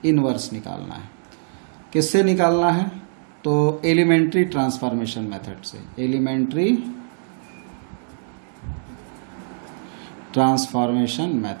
इन्वर्स निकालना है। किससे निकालना है? तो एलिमेंट्री ट्रांसफॉर्मेशन मेथड से। एलिमेंट्री ट्रांसफॉर्मेशन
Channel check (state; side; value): silent; left; digital silence